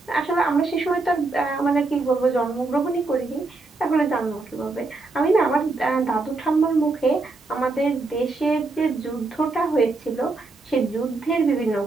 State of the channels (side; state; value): left; quieter; 3.5 dB